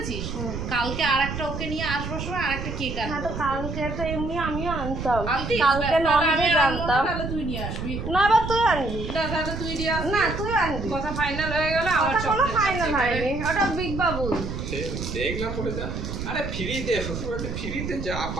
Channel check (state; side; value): noise; right; rumble, 5 dB below the sound